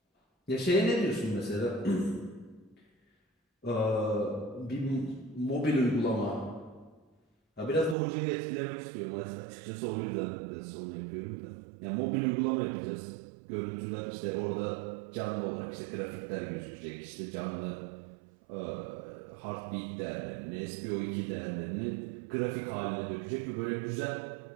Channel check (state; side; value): drops out; left; at 8.0 s